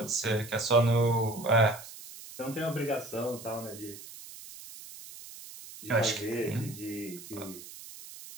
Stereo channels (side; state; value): right; noise; hiss, 15 dB below the sound